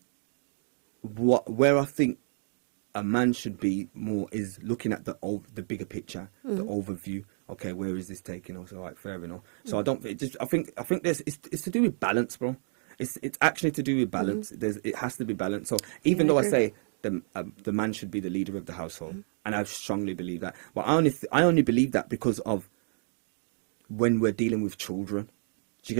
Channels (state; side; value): silent; left; 57 dB below the other